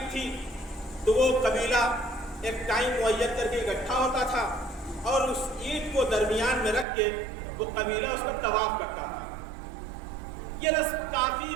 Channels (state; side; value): drops out; left; at 6.9 s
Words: تھی تو وہ قبیلہ ایک ٹائم معین کر کے اکٹھا ہوتا تھا اور اس اینٹ کو درمیان میں رکھ کے وہ قبیلہ اس کا طواف کرتا تھا۔ یہ رسم کافی